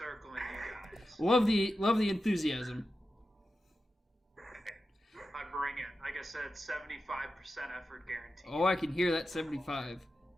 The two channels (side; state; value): both; normal; correlation 0.91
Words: you guys. Love the enthusiasm. I bring it. Like I said, 75% effort guaranteed. Oh, I can hear that 75.